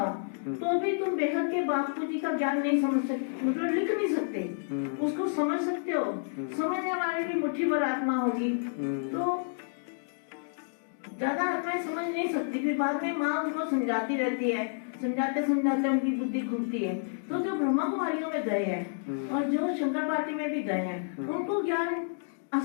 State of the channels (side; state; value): right; silent; digital silence